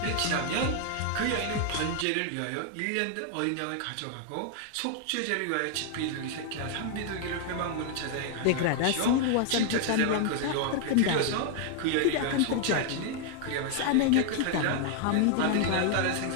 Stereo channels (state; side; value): different; both; correlation 0.00